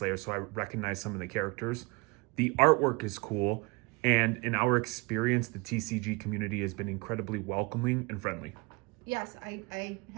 so I recognize some of the characters. The artwork is cool. And in our experience, the TCG community has been incredibly welcoming and friendly. Yes, I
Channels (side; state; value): left; quieter; 27.7 dB